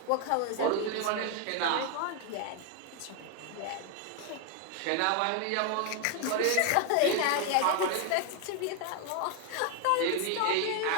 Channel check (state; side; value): different; both; correlation 0.01